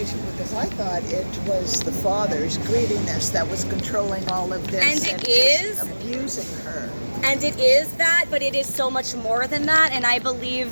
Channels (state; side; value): inverted; both; correlation -1.00